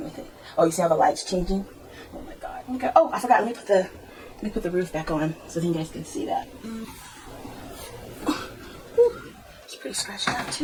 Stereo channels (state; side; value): identical; both; correlation 1.00